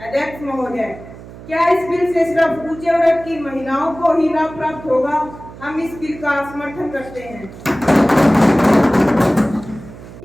अध्यक्ष महोदय, क्या इस बिल से सिर्फ ऊंचे वर्ग की महिलाओं को ही लाभ प्राप्त होगा? हम इस बिल का समर्थन करते हैं।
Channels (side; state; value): right; noise; hum, 16 dB below the sound